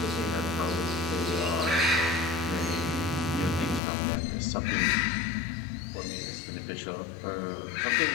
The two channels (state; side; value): drops out; right; at 3.8 s